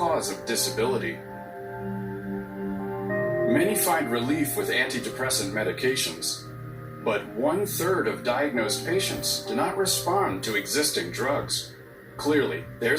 of disability. Many find relief with antidepressant medications, but 1/3 of diagnosed patients do not respond to existing drugs. Clearly,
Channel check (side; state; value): both; identical; correlation 1.00